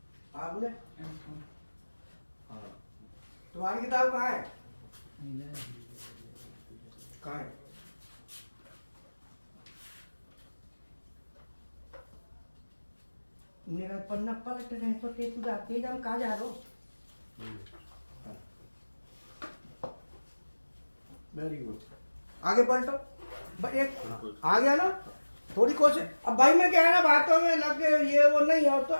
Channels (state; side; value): inverted; both; correlation -1.00